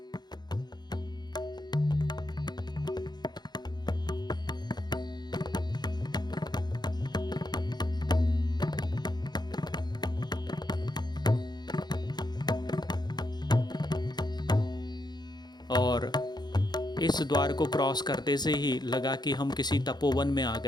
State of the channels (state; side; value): late; right; 0.20 ms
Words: और इस द्वार को क्रॉस करते से ही लगा कि हम किसी तपोवन में आ